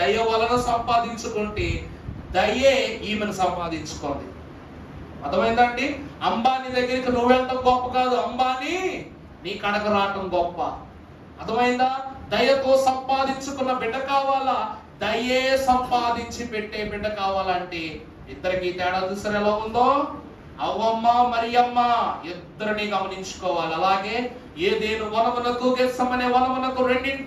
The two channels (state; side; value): identical; both; correlation 1.00